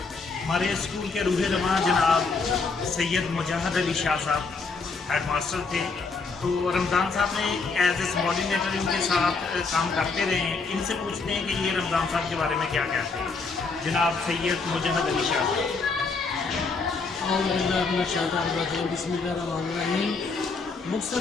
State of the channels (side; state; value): right; quieter; 4.4 dB